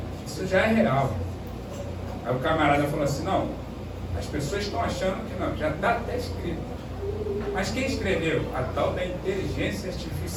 isso já é real. Aí o camarada falou assim, não, as pessoas estão achando que não, já está até escrito. Mas quem escreveu? A tal da inteligência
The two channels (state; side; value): identical; both; correlation 1.00